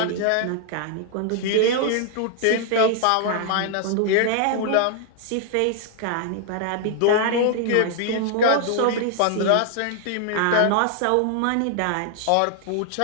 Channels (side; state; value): both; different; correlation 0.00